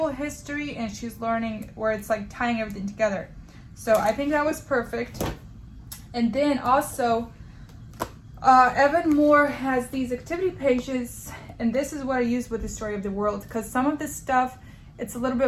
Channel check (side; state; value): both; identical; correlation 1.00